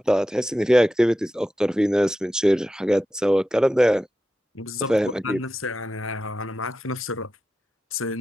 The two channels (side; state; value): both; normal; correlation 0.91